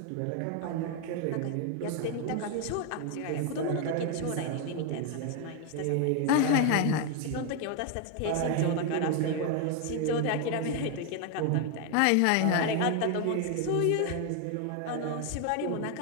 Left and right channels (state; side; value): different; both; correlation 0.01